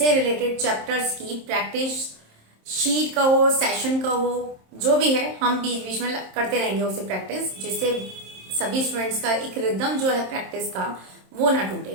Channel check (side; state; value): left; late; 27 ms